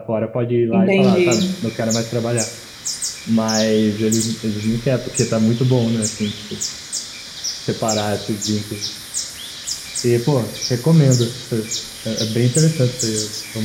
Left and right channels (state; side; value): identical; both; correlation 1.00